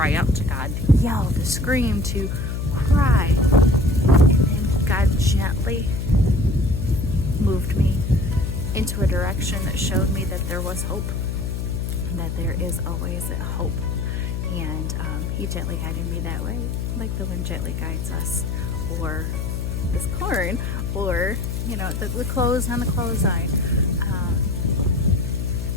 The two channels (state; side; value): noise; left; hum, 2 dB below the sound